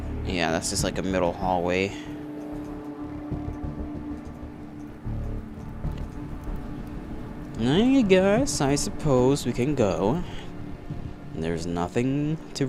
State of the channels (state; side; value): identical; both; correlation 1.00